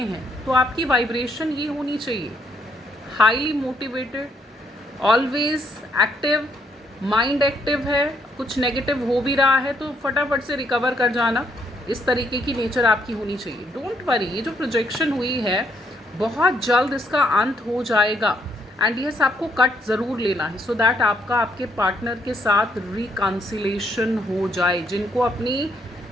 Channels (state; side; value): normal; both; correlation 0.71